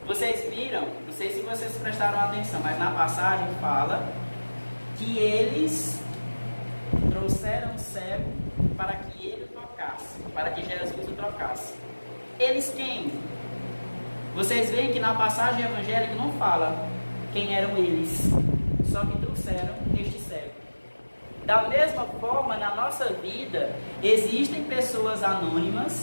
Vocês viram, não sei se vocês prestaram atenção, mas na passagem fala que eles trouxeram o cego para que ele o tocasse, para que Jesus o tocasse. Eles quem? Vocês veem que na passagem evangélica não fala quem eram eles, só que trouxeram este cego. Da mesma forma, na nossa vida, existem pessoas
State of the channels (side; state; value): both; inverted; correlation -1.00